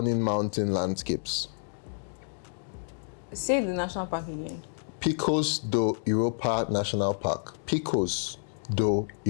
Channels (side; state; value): right; silent; digital silence